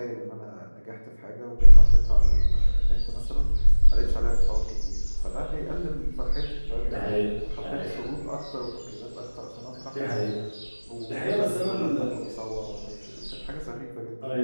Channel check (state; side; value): inverted; both; correlation -1.00